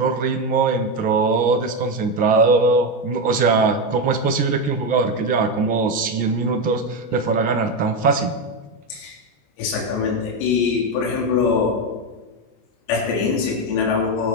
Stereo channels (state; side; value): late; right; 14 ms